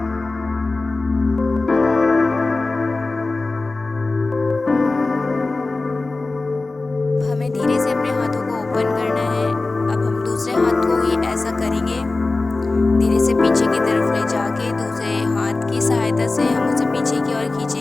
हमें धीरे से अपने हाथों को ओपन करना है। अब हम दूसरे हाथ को भी ऐसा करेंगे, धीरे से पीछे की तरफ ले जाके दूसरे हाथ की सहायता से हम उसे पीछे की ओर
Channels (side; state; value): right; quieter; 3.4 dB